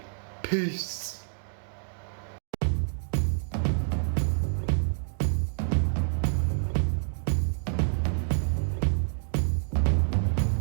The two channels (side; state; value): left; silent; 59 dB below the other